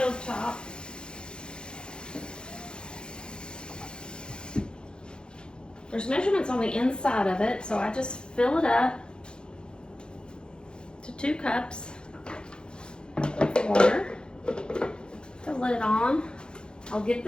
There's measurements on the inside of it, so I just fill it up to 2 cups of water. The lid on. I'll get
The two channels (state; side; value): late; right; 0.049 ms